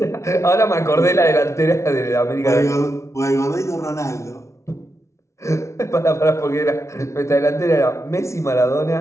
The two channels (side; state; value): right; late; 0.14 ms